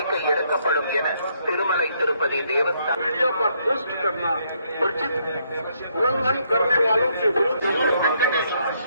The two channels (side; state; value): both; inverted; correlation -0.72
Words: எடுக்கப்படும் என திருமலை திருப்பதி தேவஸ்தானம்